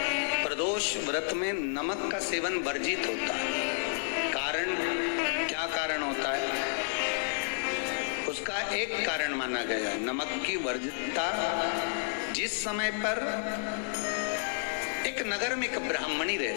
प्रदोष व्रत में नमक का सेवन वर्जित होता है। कारण क्या कारण होता है? उसका एक कारण माना गया है नमक की वर्जितता। जिस समय पर एक नगर में एक ब्राह्मणी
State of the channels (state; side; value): silent; right; digital silence